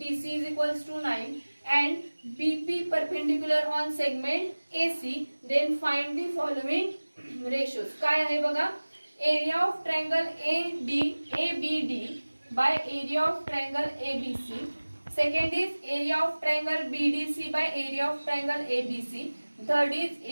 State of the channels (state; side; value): inverted; both; correlation -1.00